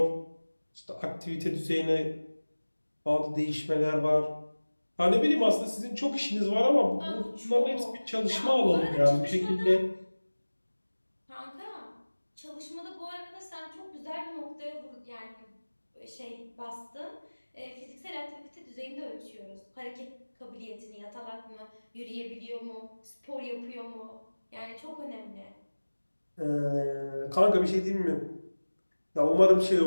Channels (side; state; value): both; inverted; correlation -1.00